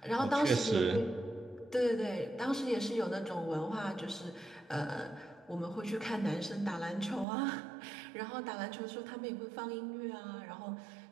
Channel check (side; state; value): left; drops out; at 7.2 s